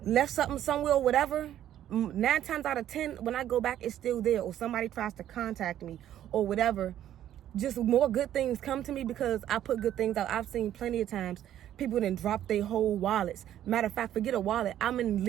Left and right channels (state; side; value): quieter; left; 11.5 dB